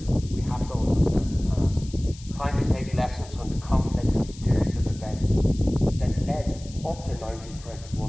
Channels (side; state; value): left; noise; hiss, 20 dB below the sound